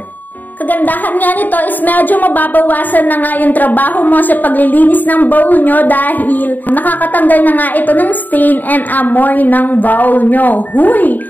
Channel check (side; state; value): right; late; 0.086 ms